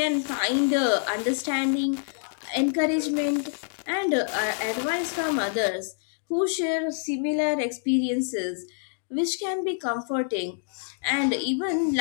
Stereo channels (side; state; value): right; silent; digital silence